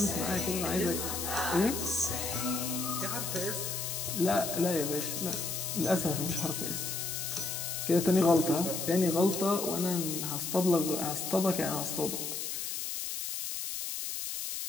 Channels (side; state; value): left; noise; hiss, 4 dB below the sound